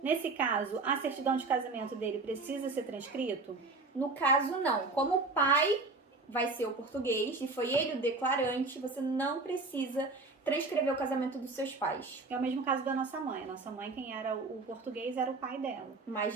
Nesse caso, a certidão de casamento dele precisa ser transcrito? No caso, não. Como o pai vai ser o português e foi ele o declarante, você não precisa transcrever o casamento dos seus pais. É o mesmo caso da nossa mãe. A nossa mãe, quem era o português, era o pai dela. Mas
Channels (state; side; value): quieter; left; 3.6 dB